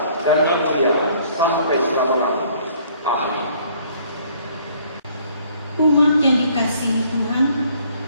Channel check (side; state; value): both; inverted; correlation -0.60